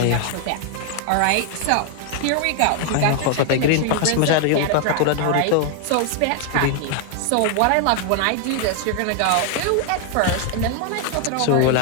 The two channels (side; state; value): both; different; correlation 0.00